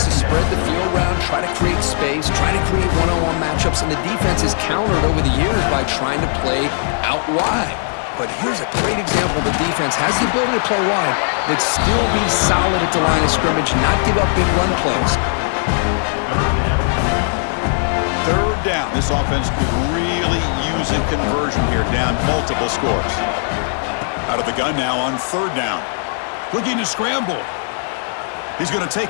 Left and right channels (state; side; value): silent; right; digital silence